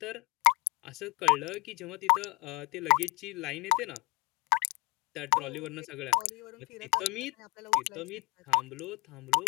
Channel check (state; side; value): quieter; right; 25.0 dB